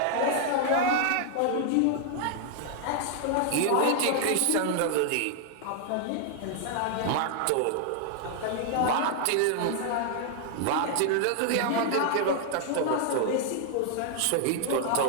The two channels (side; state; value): both; different; correlation 0.00